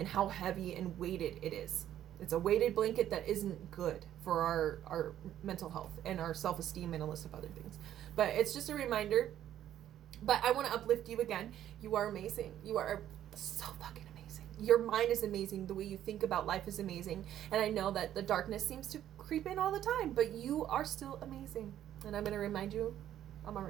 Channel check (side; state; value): left; quieter; 11.4 dB